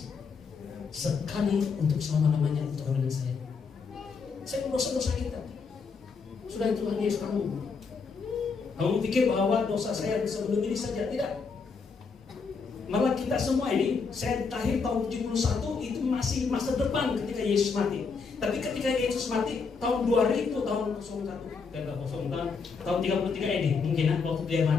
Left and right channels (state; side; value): quieter; right; 5.1 dB